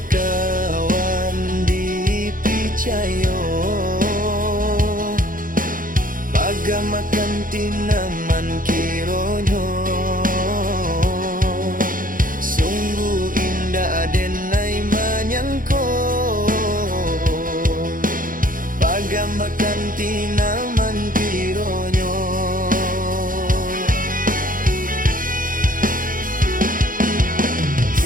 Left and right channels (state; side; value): late; left; 0.40 ms